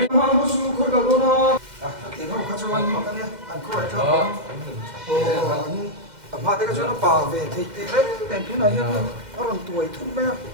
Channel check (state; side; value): late; left; 2.1 ms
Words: ha mua chú khơi cả đó à tiền nó khá cho anh mà cái này anh có phải không anh mà cái chỗ nó bảo về thì đấy đèn thứ này nó còn tuổi thun bé